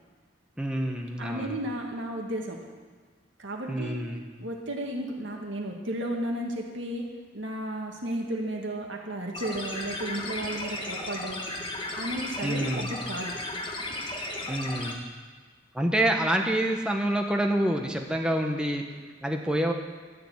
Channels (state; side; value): normal; both; correlation 0.62